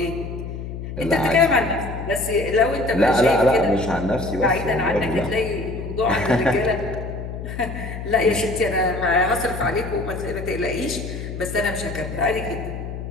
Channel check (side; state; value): left; noise; hum, 8 dB below the sound